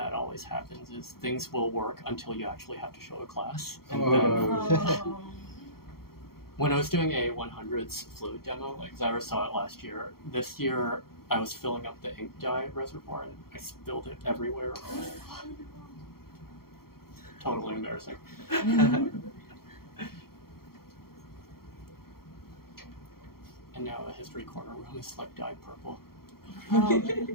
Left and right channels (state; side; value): late; right; 0.94 ms